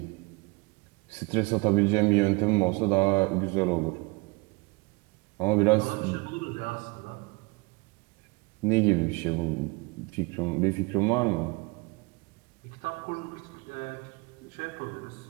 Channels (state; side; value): quieter; left; 27.4 dB